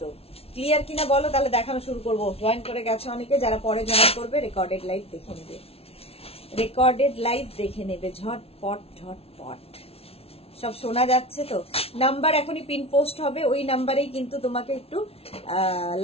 তো ক্লিয়ার কিনা বলো, তাহলে দেখানো শুরু করবো। জয়েন করে গেছে অনেকে, যারা পরে জয়েন করবে রেকর্ডেড লাইভ দেখে নেবে, ঝটপট। সব শোনা যাচ্ছে তো? নাম্বার এখনই পিন পোস্ট হবে, ওই নাম্বারেই কিন্তু তোমাকে একটু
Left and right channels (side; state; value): right; late; 0.29 ms